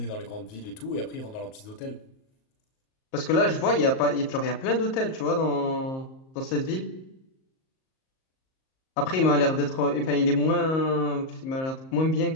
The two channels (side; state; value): right; late; 38 ms